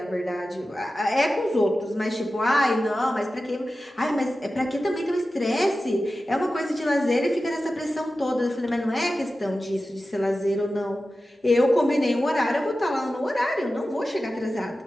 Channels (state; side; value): normal; both; correlation 0.94